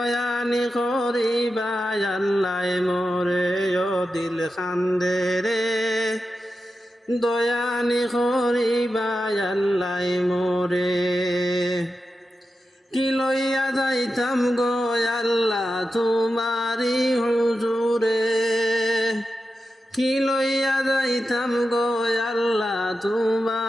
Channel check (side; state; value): both; normal; correlation 0.91